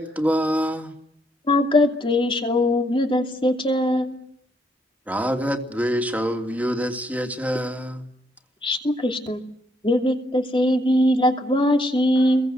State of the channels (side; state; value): both; normal; correlation 0.73